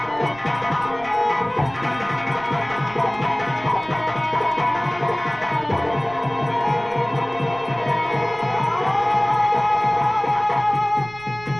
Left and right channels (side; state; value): right; noise; rumble, 21 dB below the sound